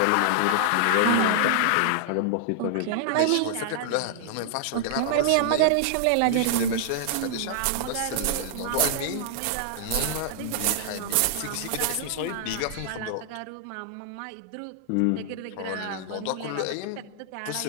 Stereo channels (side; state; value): both; different; correlation -0.01